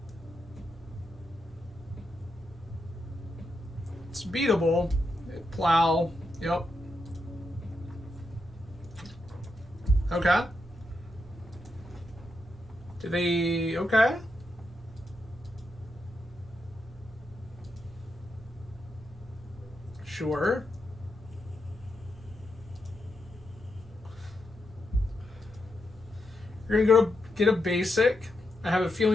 It's beatable. Plow. Yep. Okay. Do they... Okay. Sure. You're gonna go to get a basic. I have a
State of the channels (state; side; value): normal; both; correlation 0.84